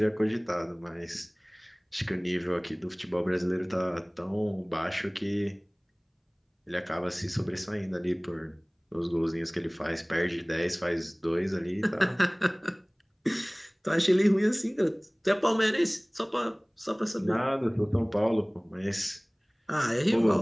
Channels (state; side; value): identical; both; correlation 1.00